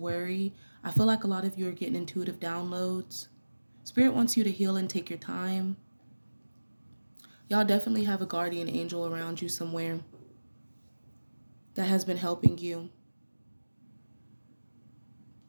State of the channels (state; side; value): inverted; both; correlation -1.00